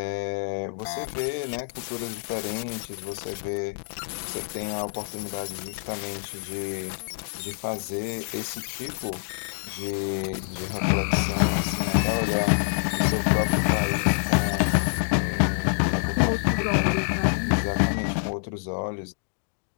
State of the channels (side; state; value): right; silent; digital silence